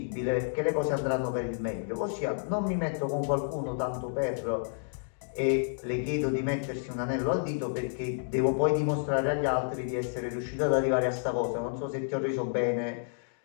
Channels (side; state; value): right; silent; digital silence